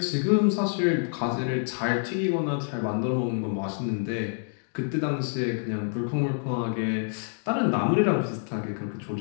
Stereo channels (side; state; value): right; silent; digital silence